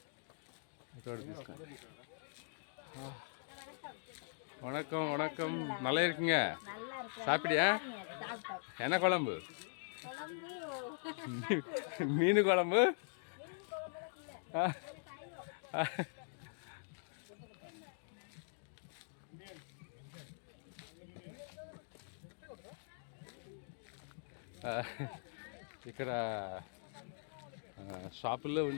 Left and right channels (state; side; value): silent; right; digital silence